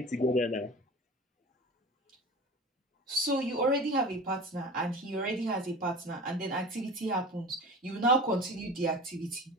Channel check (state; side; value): normal; both; correlation 0.35